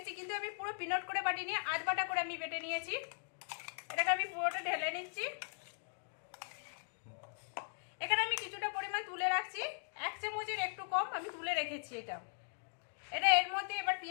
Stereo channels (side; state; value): right; silent; digital silence